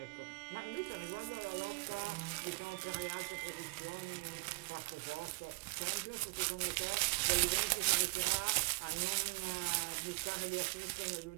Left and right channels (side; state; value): left; quieter; 29.9 dB